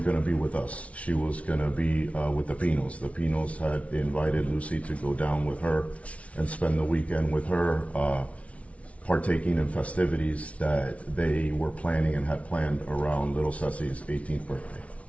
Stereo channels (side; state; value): right; late; 0.064 ms